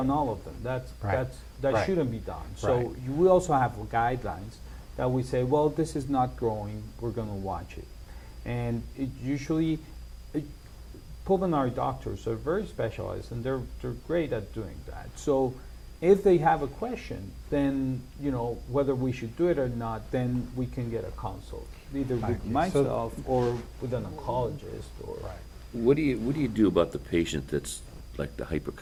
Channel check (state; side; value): identical; both; correlation 1.00